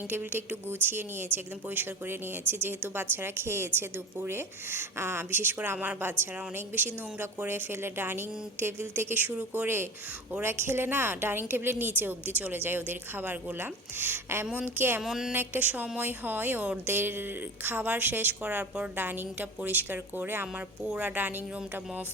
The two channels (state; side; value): normal; both; correlation 0.32